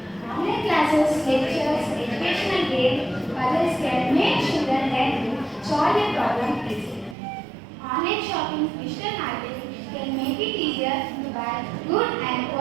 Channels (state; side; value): drops out; left; at 7.2 s